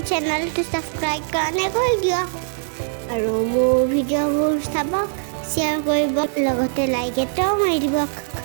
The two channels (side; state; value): left; silent; digital silence